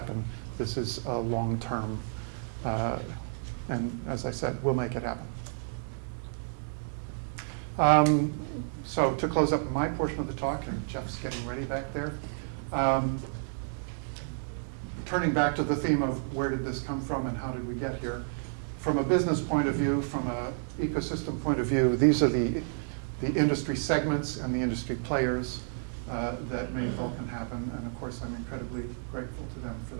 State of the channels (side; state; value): left; silent; 57 dB below the other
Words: This is a long-term, and as I said, we'll make it happen. So to close up my portion of the talk, and Jeff's getting ready back there, turning back to the theme of where did this come from and how did we get here. From a business point of view, from an ecosystem point of view, these are the industry segments and the industry players that made Vulkan happen. And of course, I'm incredibly grateful to them for